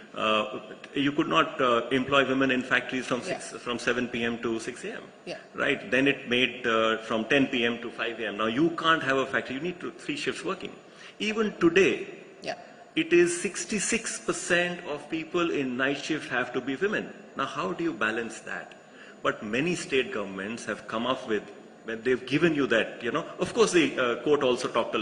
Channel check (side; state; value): both; identical; correlation 1.00